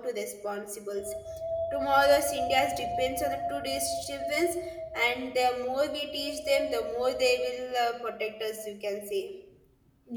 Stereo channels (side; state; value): both; identical; correlation 1.00